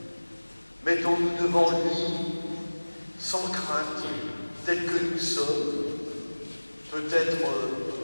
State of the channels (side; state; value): both; inverted; correlation -1.00